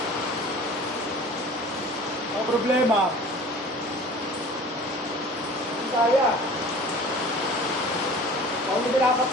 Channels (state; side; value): normal; both; correlation 0.43